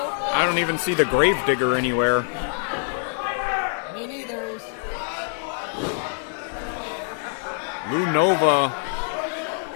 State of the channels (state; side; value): silent; right; digital silence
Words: I don't even see the gravedigger anywhere. Me neither. Lou Nova